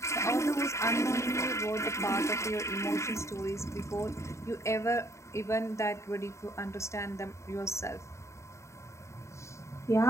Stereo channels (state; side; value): late; right; 0.14 ms